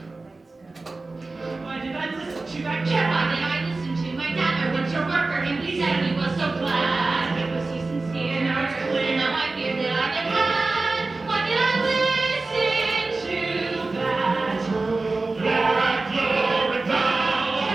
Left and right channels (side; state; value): left; quieter; 3.5 dB